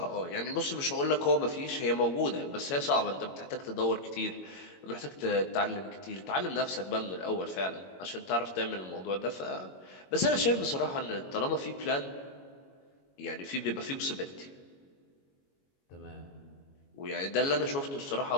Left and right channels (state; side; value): late; right; 22 ms